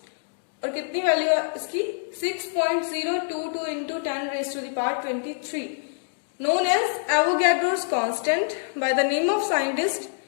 और कितनी वैल्यू है इसकी? 6.022 into 10 raised to the power 23, known as Avogadro's constant by the name of scientist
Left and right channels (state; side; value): silent; right; digital silence